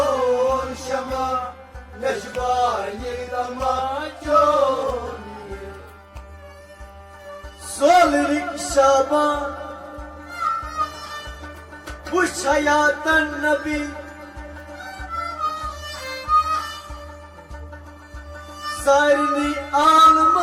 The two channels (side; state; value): both; identical; correlation 1.00